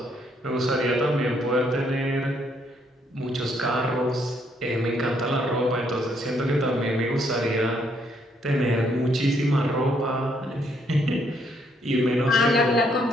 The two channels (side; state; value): both; normal; correlation 0.71